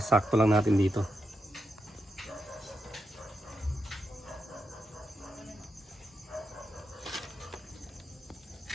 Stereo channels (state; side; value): normal; both; correlation 0.86